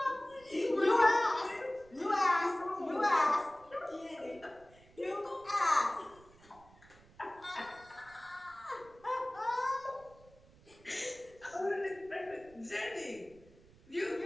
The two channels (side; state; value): right; noise; rumble, 26 dB below the sound